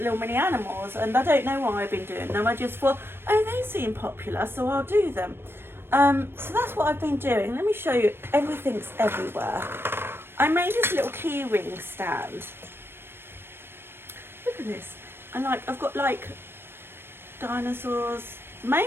mini animals, and I don't know why I've been doing them. I just thought, oh, they seem popular, so I'll do them. So that's what I've been doing. Let me show you. Everything's everywhere. I made this little key ring stand. Look at this. And like, I've got like dinosaurs,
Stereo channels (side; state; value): left; late; 0.11 ms